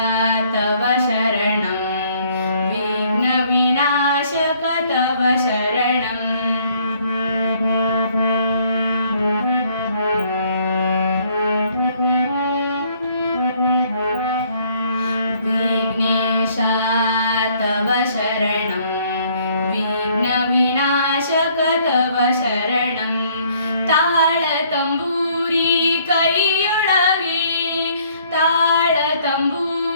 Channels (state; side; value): inverted; both; correlation -0.62